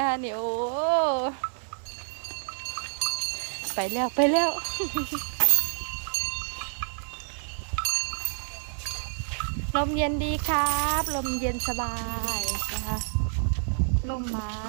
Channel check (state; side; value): silent; left; digital silence